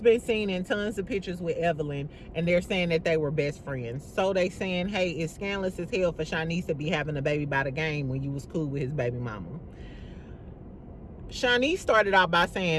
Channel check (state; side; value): identical; both; correlation 1.00